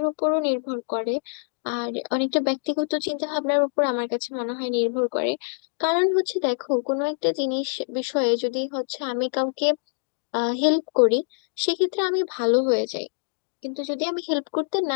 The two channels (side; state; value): right; silent; digital silence